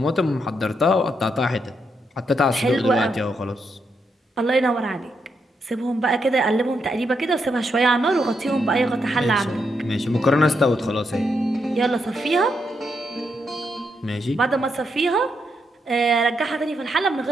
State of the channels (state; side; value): normal; both; correlation 0.80